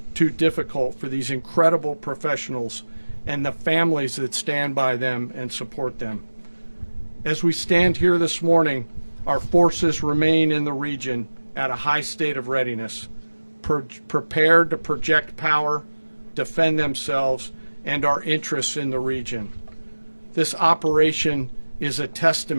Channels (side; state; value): both; inverted; correlation -1.00